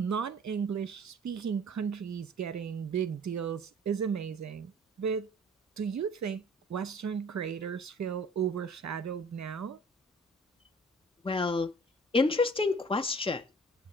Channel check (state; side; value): normal; both; correlation 0.49